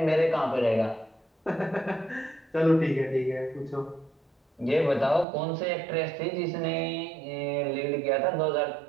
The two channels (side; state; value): left; drops out; at 5.2 s